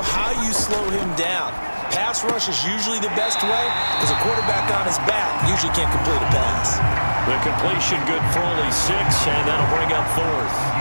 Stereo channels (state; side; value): inverted; both; correlation -1.00